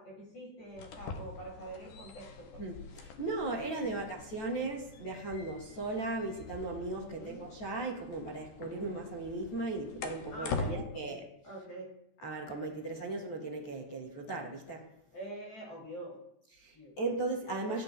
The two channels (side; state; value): right; late; 14 ms